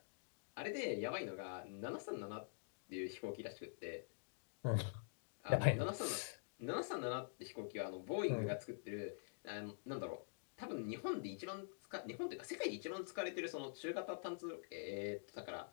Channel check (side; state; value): right; silent; digital silence